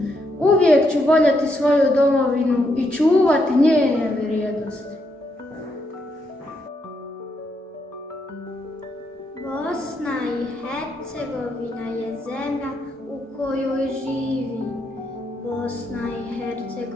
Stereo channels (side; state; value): both; normal; correlation 0.78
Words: Uvijek ću voljeti svoju domovinu i čuvati njene vrijednosti. Bosna i Hercegovina je zemlja u kojoj živim. Bosna i